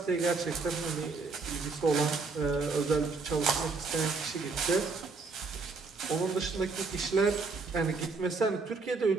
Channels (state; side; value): quieter; left; 4.2 dB